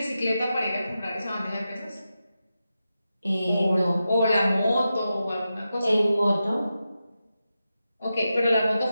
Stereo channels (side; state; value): both; inverted; correlation -0.90